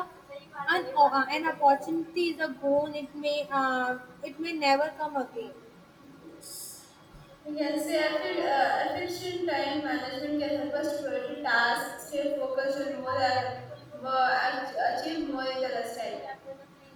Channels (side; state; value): both; identical; correlation 1.00